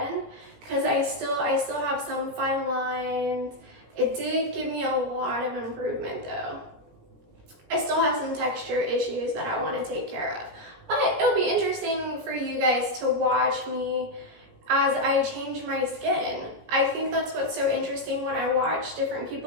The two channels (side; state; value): left; late; 18 ms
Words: because I still have some fine lines. It did give me a lot of improvement though. I still have some texture issues that I want to take care of. But it'll be interesting for you guys to watch me as I change my skin. I think that's what's so interesting when I watch different